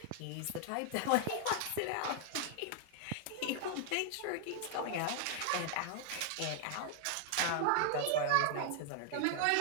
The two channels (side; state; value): both; different; correlation 0.00